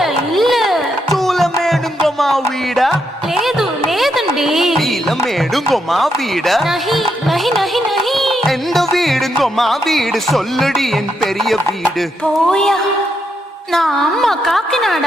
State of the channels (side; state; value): both; normal; correlation 0.80